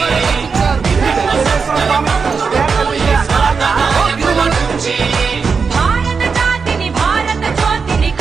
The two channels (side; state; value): left; quieter; 5.3 dB